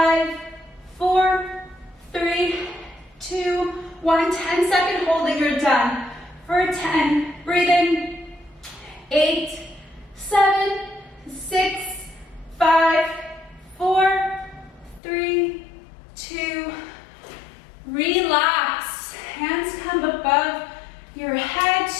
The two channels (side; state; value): right; drops out; at 15.0 s